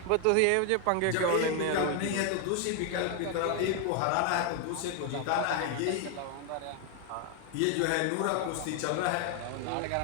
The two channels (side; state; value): both; different; correlation 0.01